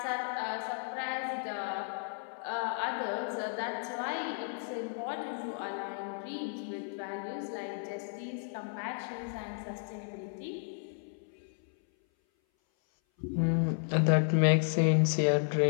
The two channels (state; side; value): silent; right; 56 dB below the other